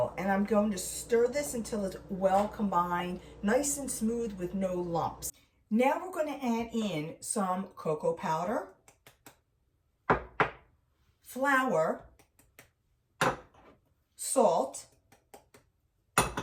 and I'm going to stir this until it's well combined, nice and smooth with no lumps. Now we're going to add in some cocoa powder, flour, salt,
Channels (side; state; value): both; identical; correlation 1.00